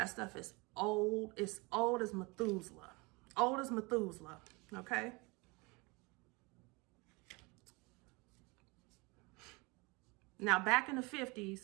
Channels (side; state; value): left; quieter; 26.9 dB